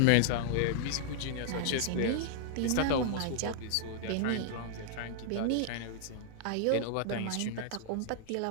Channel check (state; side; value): different; both; correlation -0.01